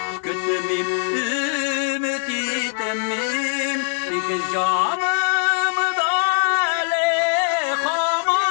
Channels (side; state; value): right; silent; 61 dB below the other